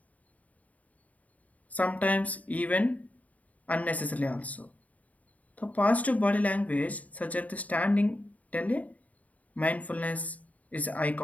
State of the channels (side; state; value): right; late; 0.071 ms